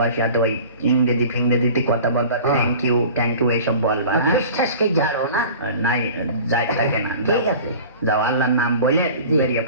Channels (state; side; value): inverted; both; correlation -0.41